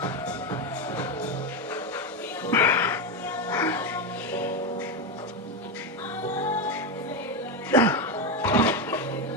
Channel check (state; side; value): normal; both; correlation 0.11